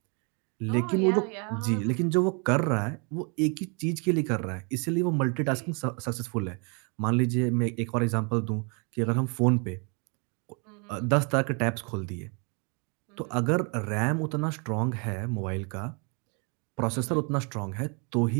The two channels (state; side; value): quieter; left; 34.7 dB